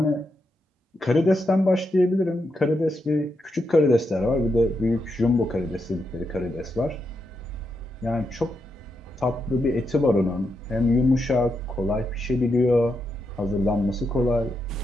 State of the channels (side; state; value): both; normal; correlation 0.83